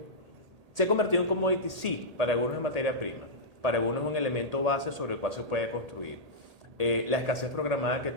se ha convertido en commodity, sí, para algunos es materia prima, para algunos es un elemento base sobre el cual se puede construir. La escasez programada que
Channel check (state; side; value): late; left; 1.8 ms